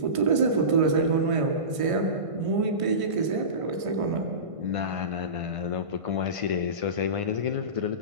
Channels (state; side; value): late; left; 1.5 ms